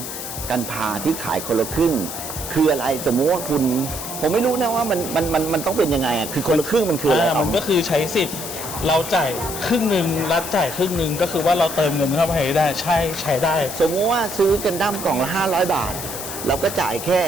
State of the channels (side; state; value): left; noise; hiss, 8 dB below the sound